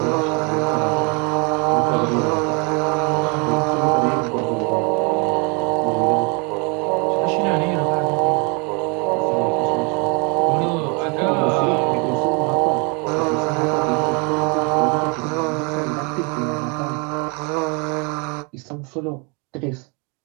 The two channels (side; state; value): left; quieter; 32.4 dB